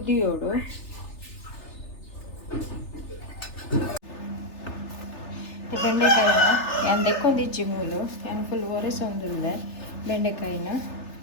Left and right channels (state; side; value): late; right; 3.3 ms